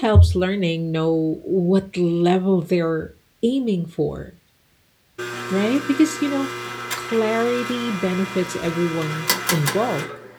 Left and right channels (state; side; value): identical; both; correlation 1.00